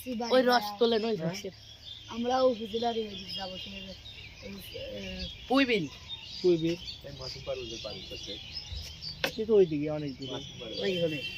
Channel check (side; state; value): both; identical; correlation 1.00